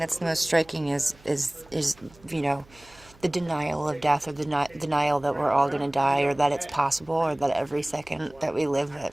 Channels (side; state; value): right; noise; hum, 26 dB below the sound